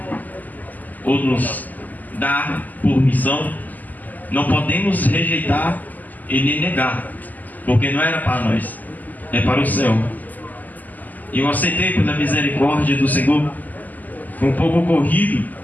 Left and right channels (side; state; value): right; late; 0.082 ms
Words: ou nos dá por missão, não podemos rejeitar e nem negar, porque não era para nós, é para o céu. E eu aceitei pela misericórdia do Senhor. Foi um pouco corrido,